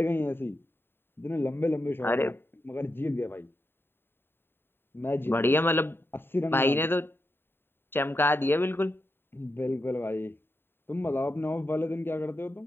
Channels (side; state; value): right; late; 0.11 ms